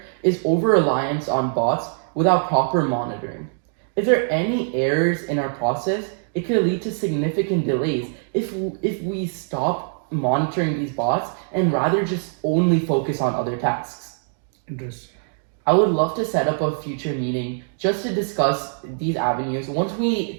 is over-reliance on bots without proper monitoring. If there are any errors in our process, it could lead to significant delays if we stop monitoring these bots and rather just only focus on other tasks. Interesting. I would love to set up a future meeting just to discuss these avenues once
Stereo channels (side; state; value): left; silent; 64 dB below the other